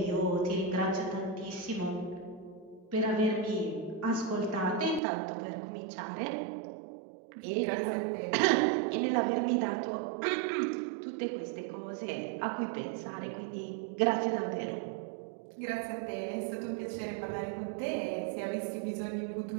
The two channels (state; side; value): drops out; left; at 5.0 s